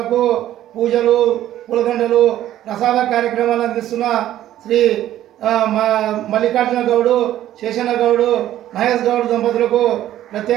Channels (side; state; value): left; quieter; 12.8 dB